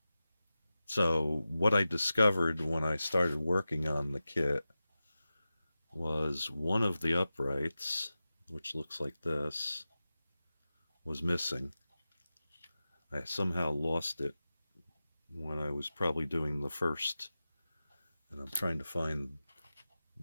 so what I discovered when I started working on the kit was one of the uprights, which looks like this, was missing. I somehow lost it when I was probably doing the first, and I'm trying to find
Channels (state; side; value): inverted; both; correlation -0.94